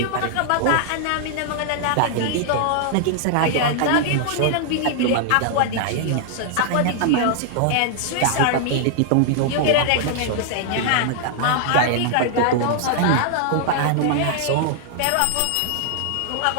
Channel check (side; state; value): both; different; correlation 0.00